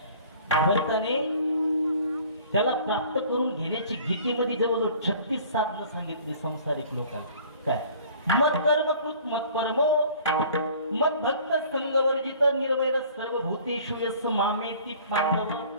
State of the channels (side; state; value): both; inverted; correlation -0.50